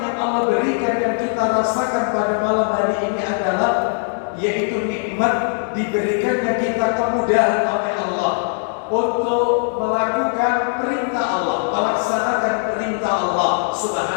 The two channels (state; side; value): silent; right; digital silence